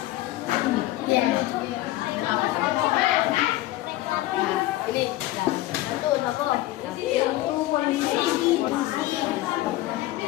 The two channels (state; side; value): quieter; right; 16.4 dB